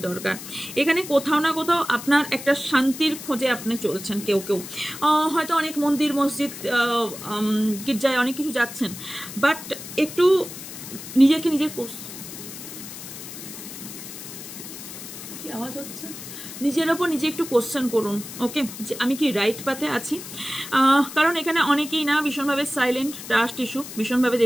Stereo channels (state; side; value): noise; left; hiss, 12 dB below the sound